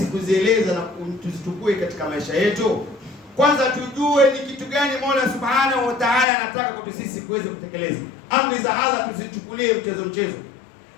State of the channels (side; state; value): right; drops out; at 6.2 s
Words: kuzieleza na tuzitukue katika maisha yetu. Kwanza tujue ni kitu gani Mola Subhanahu wa Ta'ala anataka kwa sisi kuweza kutekeleza. Amri za Allah tusichukulie mchezo.